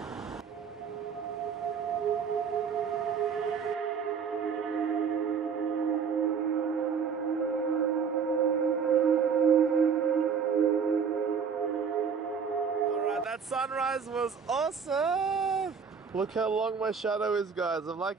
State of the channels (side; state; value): left; quieter; 6.4 dB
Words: Alright, that sunrise was awesome! Look how long my shadow is, guys. I'm like